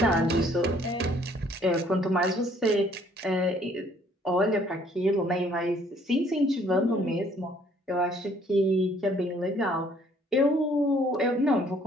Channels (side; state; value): both; normal; correlation 0.61